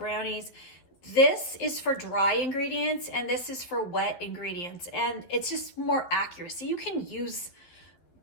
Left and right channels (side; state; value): right; late; 11 ms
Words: this is for dry ingredients and this is for wet ingredients, and it's just more accuracy. You can use